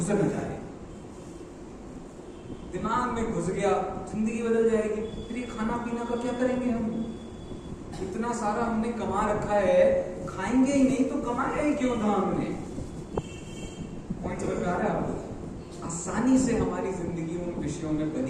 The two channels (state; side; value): identical; both; correlation 1.00